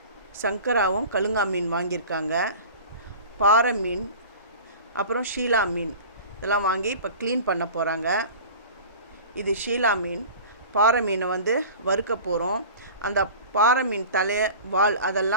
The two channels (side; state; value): both; inverted; correlation -0.38